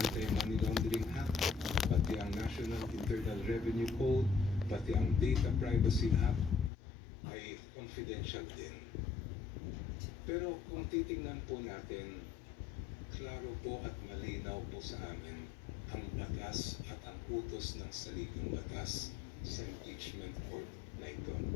Laundering Act, pati ang National Internal Revenue Code, pati ang Data Privacy Act ay confidential din. Pero kung titingnan po natin, klaro po at malinaw po sa amin ang batas at ang utos ng saligang batas sa impeachment court na ito.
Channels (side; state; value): right; drops out; at 6.7 s